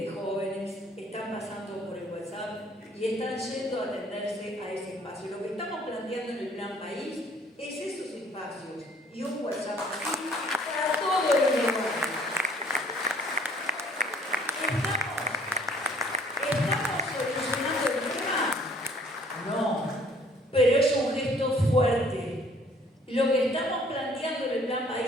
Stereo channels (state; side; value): normal; both; correlation 0.58